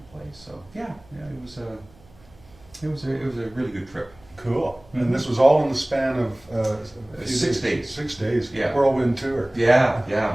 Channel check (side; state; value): right; noise; hum, 27 dB below the sound